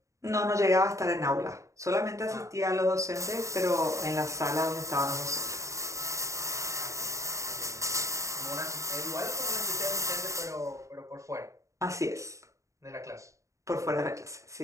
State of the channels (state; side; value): late; left; 0.15 ms